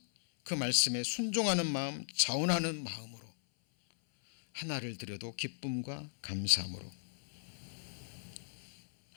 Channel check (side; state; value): right; silent; 53 dB below the other